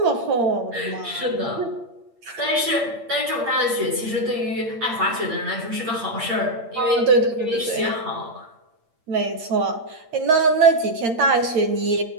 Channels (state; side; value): late; left; 8.7 ms